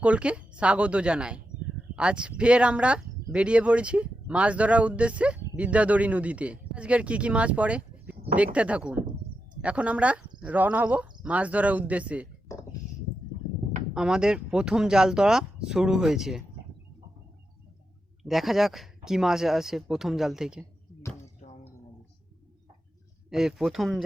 স্বাগত জানাই। আজ ফের আমরা বেরিয়ে পড়েছি মাছ ধরার উদ্দেশ্যে বিদ্যাধরী নদীতে। আজকের কি মাছ পড়ে দেখতে থাকুন। এখন আমরা রওনা হব মাছ ধরার উদ্দেশ্যে। আমাদের প্রথম জাল ধরা শুরু হয়েছে, দেখা যাক কি মাছ আসে প্রথম জাল থেকে। এই প্রথম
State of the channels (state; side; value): normal; both; correlation 0.87